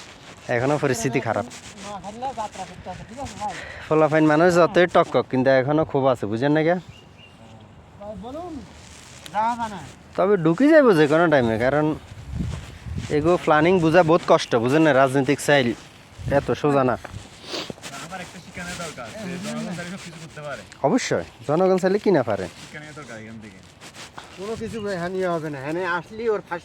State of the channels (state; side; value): identical; both; correlation 1.00